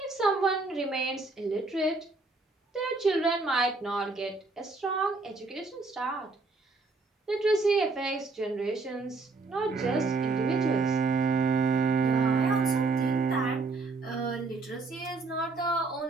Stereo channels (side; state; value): left; quieter; 3.8 dB